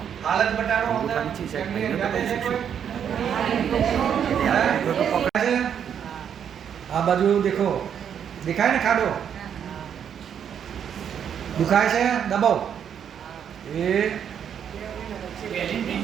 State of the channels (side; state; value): left; quieter; 8.4 dB